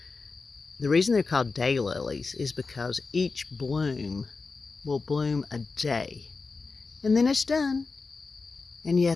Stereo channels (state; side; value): quieter; right; 4.2 dB